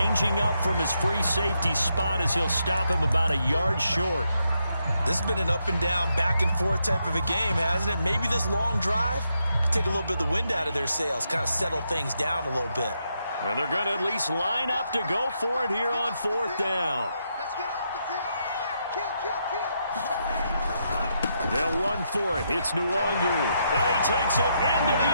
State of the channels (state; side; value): inverted; both; correlation -0.80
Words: up from his free safety spot as he'll stop him about a yard short. This has been an up and down, back and forth type of a game, hasn't it? Maybe this long drive could take a little bit of the wind out of their sails, kind of settle things down a little bit. And they're going to at least line up to go for it here on 4th down. Let's get off the field. Kill. They'll run for it. It's Nwangu. And he takes it into the